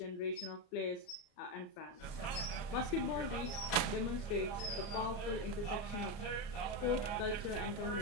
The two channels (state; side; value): late; right; 34 ms